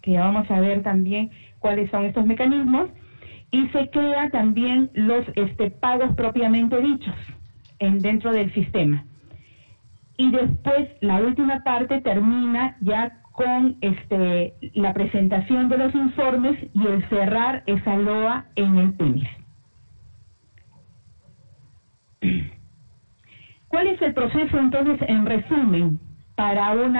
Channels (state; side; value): inverted; both; correlation -1.00